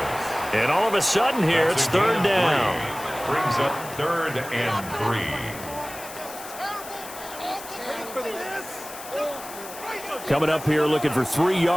And all of a sudden here, it's third down. Brings up 3rd and 3. Coming up here looking for 3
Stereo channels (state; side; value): noise; left; hiss, 14 dB below the sound